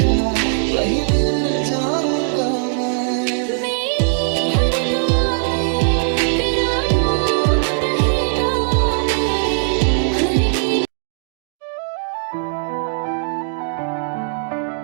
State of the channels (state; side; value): silent; left; digital silence